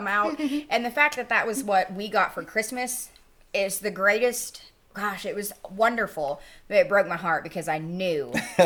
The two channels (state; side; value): identical; both; correlation 1.00